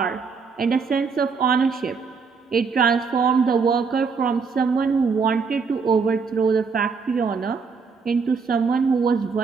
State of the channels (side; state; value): left; quieter; 5.2 dB